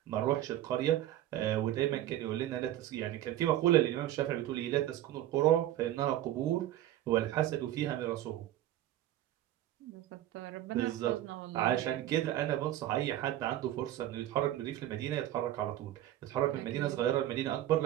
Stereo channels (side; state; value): left; quieter; 13.3 dB